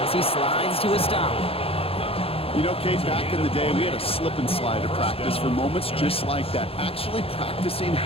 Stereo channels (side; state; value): right; late; 0.27 ms